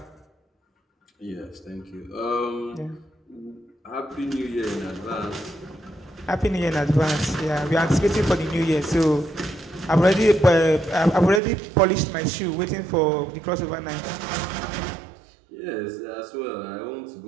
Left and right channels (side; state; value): left; drops out; at 11.4 s